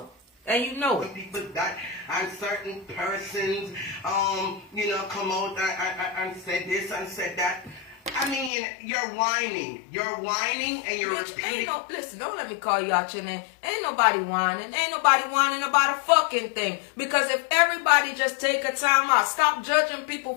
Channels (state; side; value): drops out; right; at 8.5 s